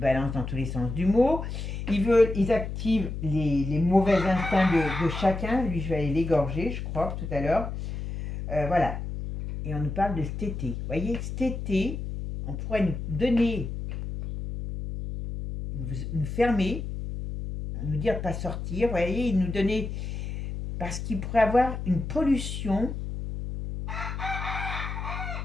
dans tous les sens du mot. Ils activent les mauvais instincts de chacun. Lui, je vais aller l'égorger, je crois, tout à l'heure. Voilà. Et on nous parle de cet été. Vous voyez, cet été, on pourrait nous donner, nous fermer, nous dire de ne pas sortir. Vous voyez, ils nous donnaient, parce qu'il pourrait avoir une pollution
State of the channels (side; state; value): left; noise; hum, 6 dB below the sound